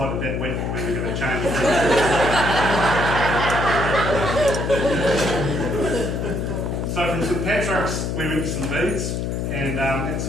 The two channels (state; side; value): noise; left; hum, 2 dB below the sound